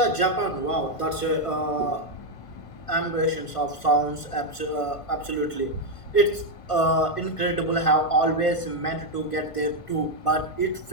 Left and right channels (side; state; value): right; late; 1.5 ms